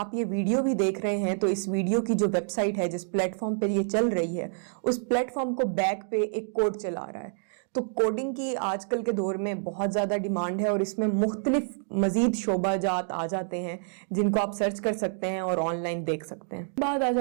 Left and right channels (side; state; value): left; silent; digital silence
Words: ये वीडियो भी देख रहे हैं तो इस वीडियो की जो वेबसाइट है, जिस प्लेटफॉर्म पे ये चल रही है, उस प्लेटफॉर्म को बैक पे एक कोड चला रहा है। तो कोडिंग की आजकल के दौर में बहुत ज़्यादा डिमांड है और इसमें मुख्तलिफ मज़ीद शोबाजात आ जाते हैं जिनको आप सर्च कर सकते हैं और ऑनलाइन देख सकते हैं। बात आ